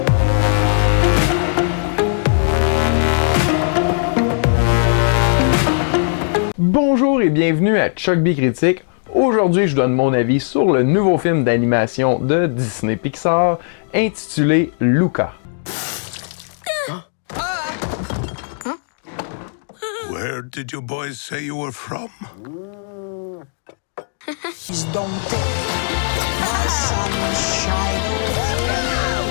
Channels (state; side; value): silent; right; digital silence